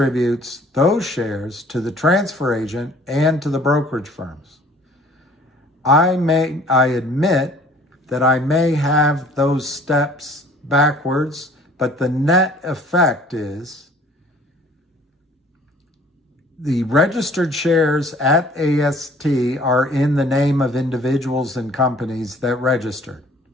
those shares to the transfer agent and to the brokerage firms. I admit that I may have those steps backwards, but the net effect is the registered shares at AST are in the name of individuals and companies that registered.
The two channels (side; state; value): both; normal; correlation 0.53